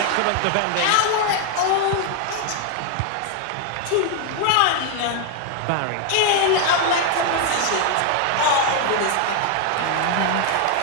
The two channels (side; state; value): both; different; correlation 0.01